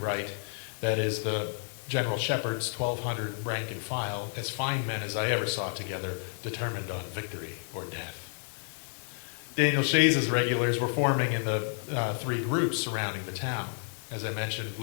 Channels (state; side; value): silent; right; 57 dB below the other